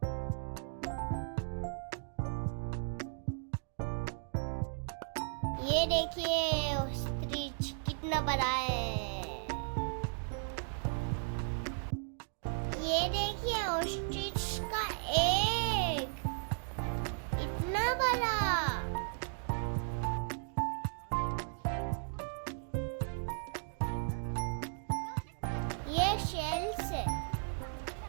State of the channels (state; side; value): silent; left; 54 dB below the other